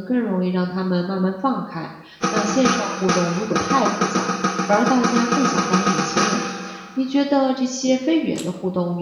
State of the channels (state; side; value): identical; both; correlation 1.00